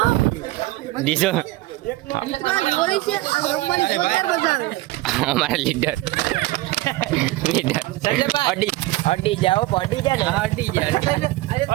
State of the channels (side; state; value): left; quieter; 18.6 dB